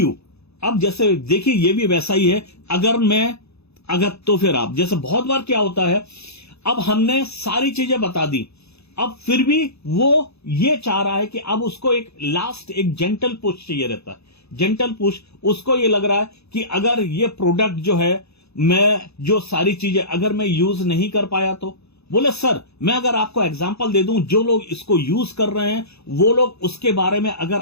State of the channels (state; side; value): late; right; 0.79 ms